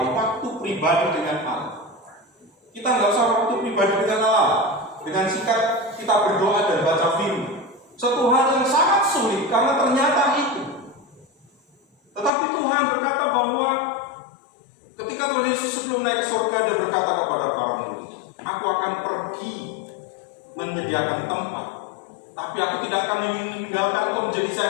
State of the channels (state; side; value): drops out; right; at 12.3 s